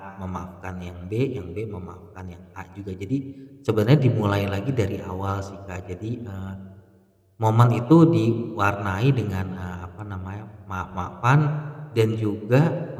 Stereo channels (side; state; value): both; identical; correlation 1.00